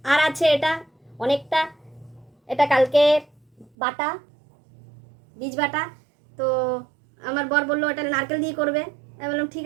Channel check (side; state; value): left; drops out; at 3.7 s